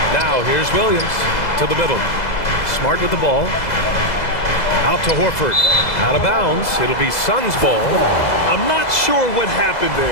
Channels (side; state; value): right; late; 2.0 ms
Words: Now here's Williams to the middle. Smart with the ball. Out to Horford. Out of bounds. It'll be Suns ball. I'm not sure what happened